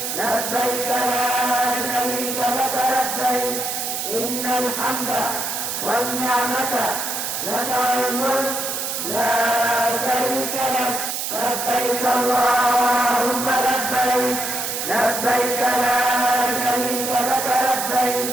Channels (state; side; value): noise; right; hiss, 3 dB below the sound